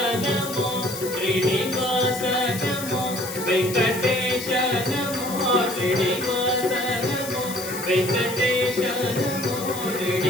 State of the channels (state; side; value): noise; left; hiss, 10 dB below the sound